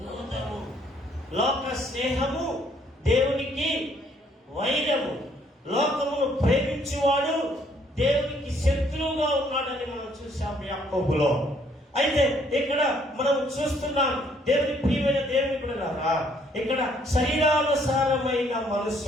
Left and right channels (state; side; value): normal; both; correlation 0.65